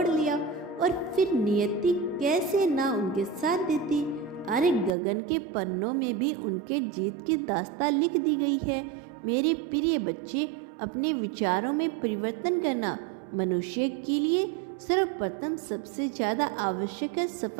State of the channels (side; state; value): left; drops out; at 4.9 s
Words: लिया। और फिर नियति कैसे ना उनके साथ देती। अरे गगन के पन्नों में भी उनके जीत की दास्तां लिख दी गई है। मेरे प्रिय बच्चे, अपने विचारों में परिवर्तन करना मनुष्य के लिए सर्वप्रथम सबसे ज़्यादा आवश्यक है।